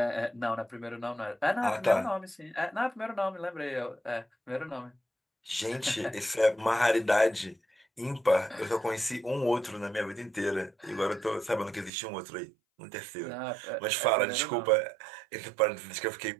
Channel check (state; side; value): drops out; left; at 11.9 s